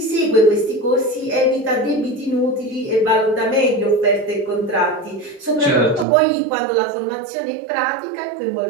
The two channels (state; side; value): drops out; left; at 6.1 s